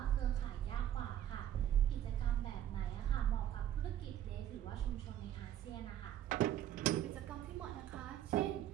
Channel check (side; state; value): left; quieter; 11.2 dB